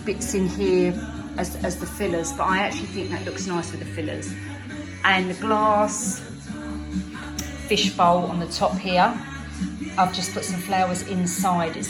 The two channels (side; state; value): both; identical; correlation 1.00